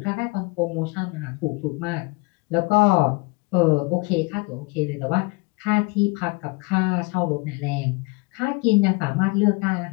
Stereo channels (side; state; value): right; quieter; 27.5 dB